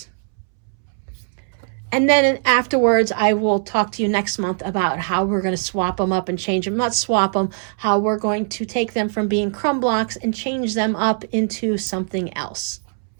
And then afterwards, I will talk to you next month about how we're going to swap them up and change them. Not swap them, how we're going to take them from being crumb blocks and change them up into something else.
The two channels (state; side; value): silent; left; 65 dB below the other